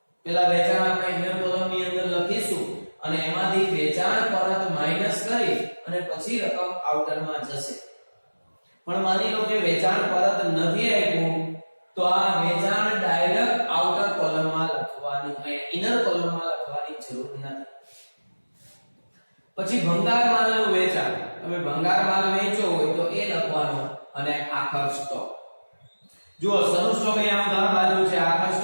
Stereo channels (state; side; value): inverted; both; correlation -1.00